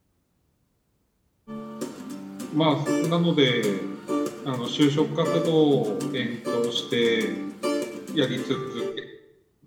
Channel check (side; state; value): both; identical; correlation 1.00